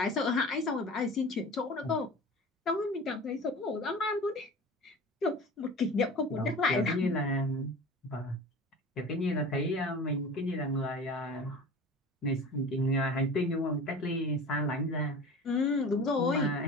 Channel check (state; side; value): normal; both; correlation 0.37